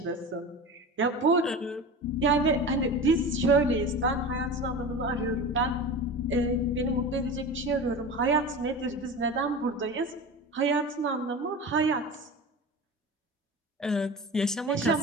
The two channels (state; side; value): normal; both; correlation 0.30